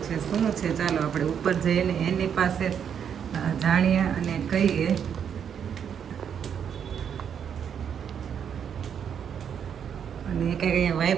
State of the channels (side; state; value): left; quieter; 8.0 dB